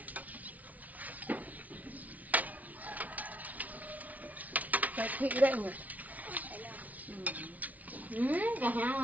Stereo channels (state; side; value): late; left; 0.073 ms